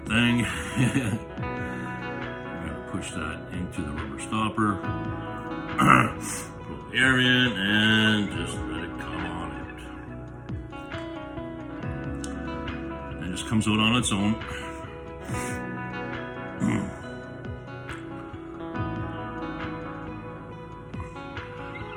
thing. I'm gonna push that into the rubber stopper. Pull the air in and just let it come on out. It just comes out on its own.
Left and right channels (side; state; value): both; identical; correlation 1.00